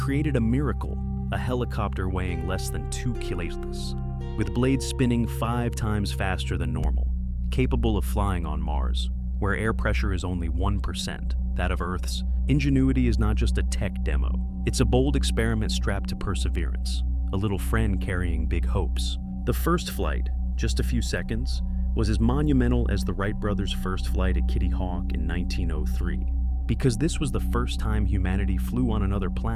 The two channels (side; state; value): both; identical; correlation 1.00